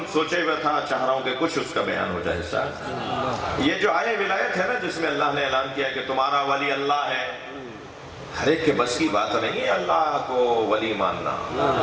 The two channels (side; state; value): both; identical; correlation 1.00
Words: سوچے ہوئے تھا چاہ رہا ہوں کہ کچھ اس کا بیان ہو جائے. حصہ یہ جو آیہ ولایت ہے نا، جس میں اللہ نے اعلان کیا کہ تمہارا ولی اللہ ہے، ہر ایک کے بس کی بات نہیں ہے اللہ کو ولی ماننا.